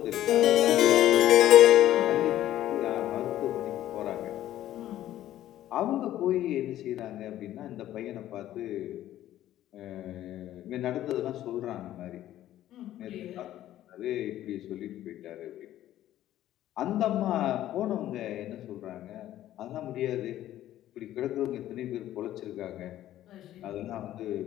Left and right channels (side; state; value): right; quieter; 13.1 dB